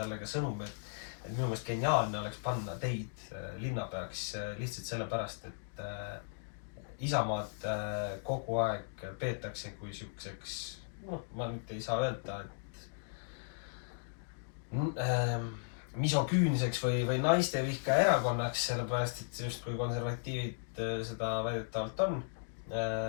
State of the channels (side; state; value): right; silent; digital silence